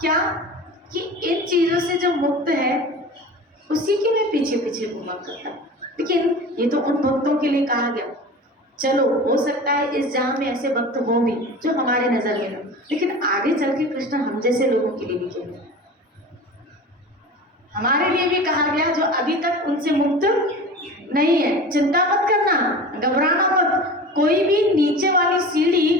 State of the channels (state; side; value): normal; both; correlation 0.35